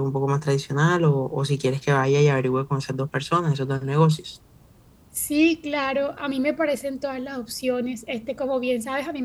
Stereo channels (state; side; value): identical; both; correlation 1.00